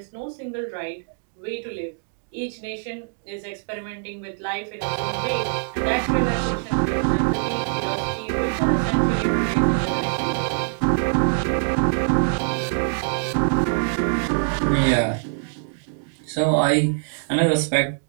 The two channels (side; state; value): left; silent; digital silence